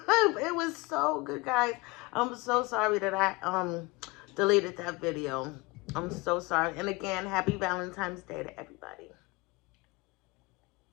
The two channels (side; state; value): right; quieter; 24.3 dB